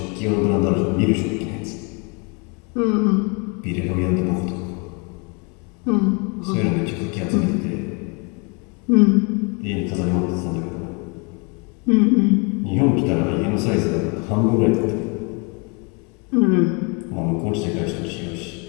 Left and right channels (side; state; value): right; quieter; 33.0 dB